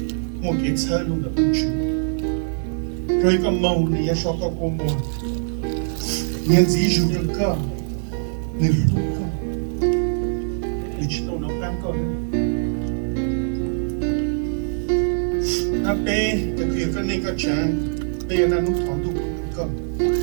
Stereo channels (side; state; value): left; silent; 60 dB below the other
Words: Mokits Halu the Uchu, Koika Moni, Yashaka Komo, Yanzi Juka, Niluka. digital nó đang có nó bé cái kia cái này cái chán bé nó thằng tụ